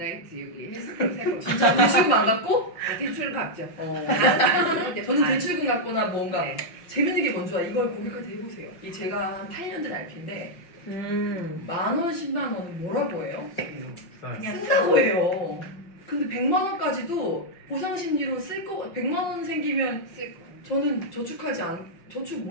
여기 헬스클럽 살 겁니다. 진짜 대출금 안 갚고? 대출 갚죠. 어. 안 쓰는데 저는 반. 대출금 갚거나 뭔가 네. 재밌는 게 뭔지 알아? 이걸 고객한테 해보세요. 이 제가 한 8년 된 RP인데 10,000원, 10만 원은 뭐라고 해요? 그냥 쓴다고 해요. 근데 100만 원까지도 보상 심리로 쓸 거. 100만 원 생기면 쓸 거. 저는 저축하지 않. 저축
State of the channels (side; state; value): right; late; 5.6 ms